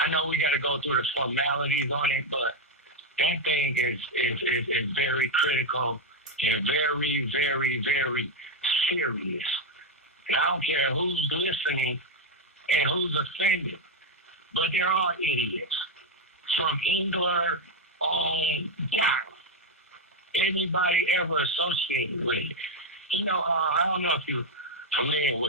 I know we got to go through the formalities on it, but that thing is very critical and very, very, very serious. And I don't care who's listening and who's offended, but there are idiots from England on down. Anybody ever associated with it? You know, I don't know if you're familiar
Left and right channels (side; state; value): both; normal; correlation 0.03